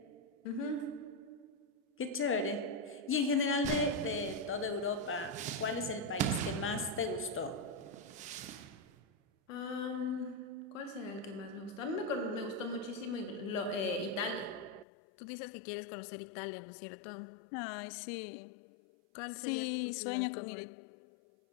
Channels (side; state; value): right; drops out; at 14.9 s